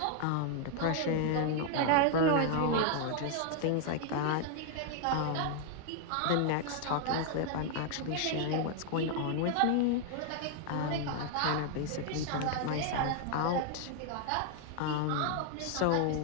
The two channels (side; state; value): both; different; correlation 0.00